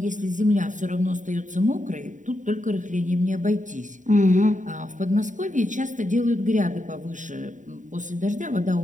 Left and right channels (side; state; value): left; late; 0.36 ms